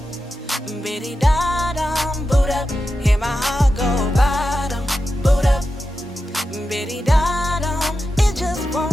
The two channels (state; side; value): normal; both; correlation 0.90